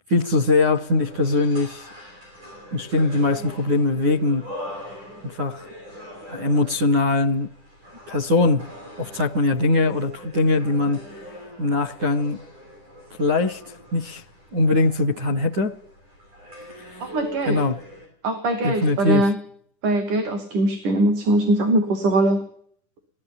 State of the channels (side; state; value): left; late; 10 ms